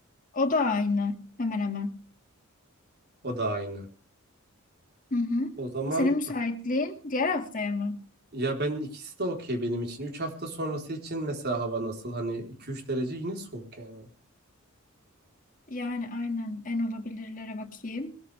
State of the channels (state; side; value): normal; both; correlation 0.37